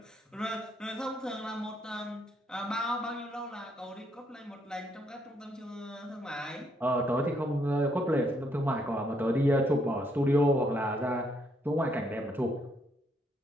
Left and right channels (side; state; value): both; normal; correlation 0.73